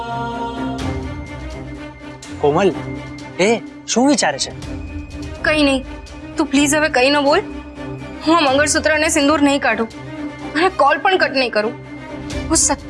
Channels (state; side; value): identical; both; correlation 1.00